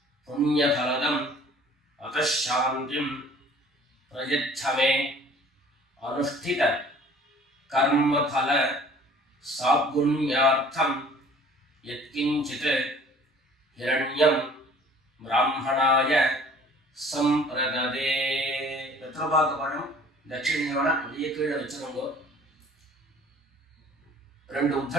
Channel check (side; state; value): both; normal; correlation 0.51